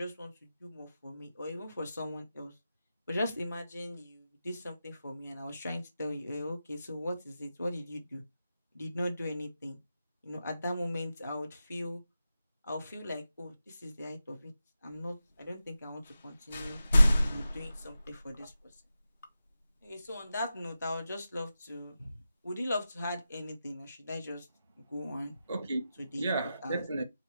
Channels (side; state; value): both; inverted; correlation -0.92